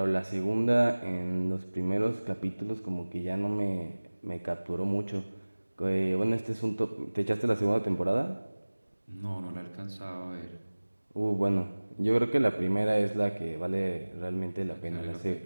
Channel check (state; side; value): inverted; both; correlation -1.00